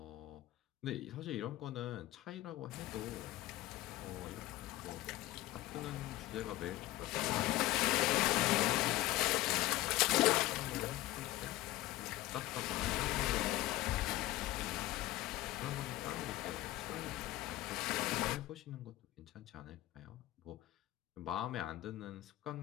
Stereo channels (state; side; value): quieter; right; 16.8 dB